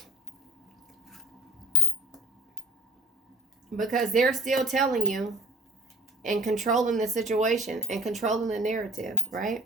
Because they're still telling you and controlling the situation and controlling the narrative, right?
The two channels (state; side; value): normal; both; correlation 0.47